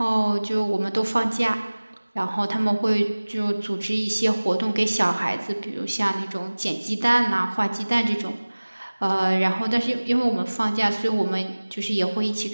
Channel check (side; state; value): both; inverted; correlation -1.00